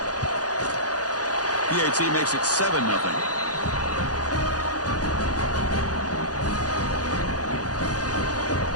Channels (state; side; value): late; right; 0.68 ms